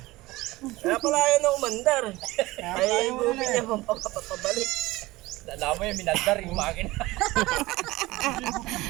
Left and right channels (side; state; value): left; quieter; 19.6 dB